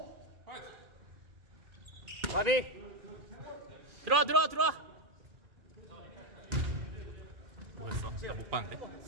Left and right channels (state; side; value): late; left; 2.4 ms